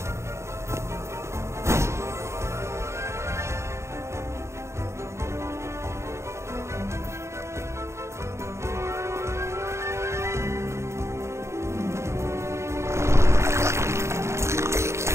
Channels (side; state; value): left; late; 0.13 ms